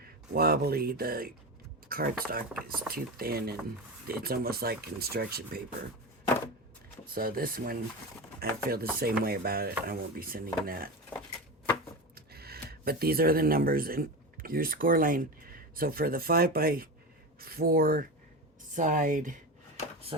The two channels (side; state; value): both; normal; correlation 0.22